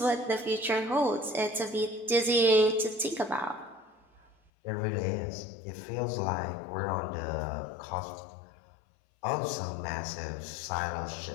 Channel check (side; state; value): right; drops out; at 4.4 s